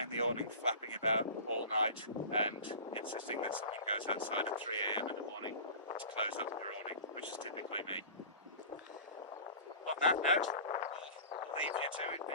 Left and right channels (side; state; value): both; inverted; correlation -0.37